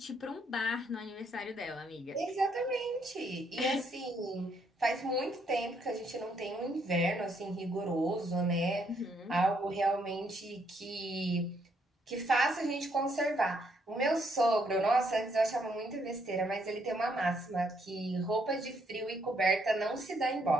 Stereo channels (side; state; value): both; normal; correlation 0.72